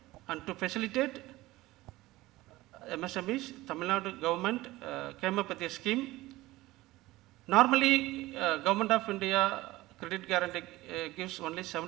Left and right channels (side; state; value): left; quieter; 18.4 dB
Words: and to facilitate MSMEs, Tamil Nadu government came up with a scheme. Normally, Government of India credit guarantee gives only